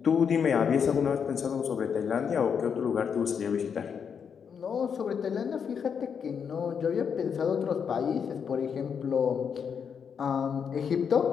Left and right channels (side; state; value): right; quieter; 7.0 dB